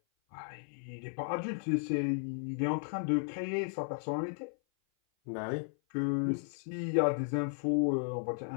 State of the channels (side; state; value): right; silent; 55 dB below the other